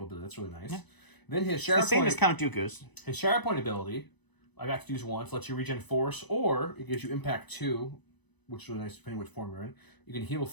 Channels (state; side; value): late; right; 1.0 ms